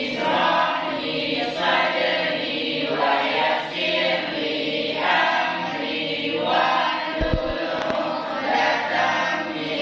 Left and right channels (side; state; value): both; identical; correlation 1.00